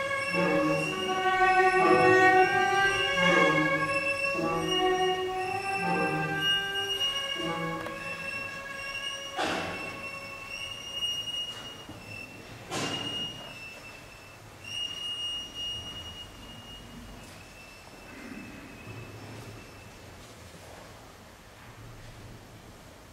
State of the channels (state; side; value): identical; both; correlation 1.00